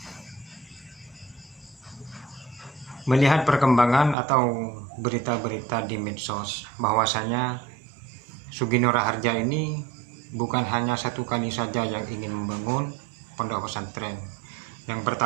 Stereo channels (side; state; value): left; drops out; at 4.2 s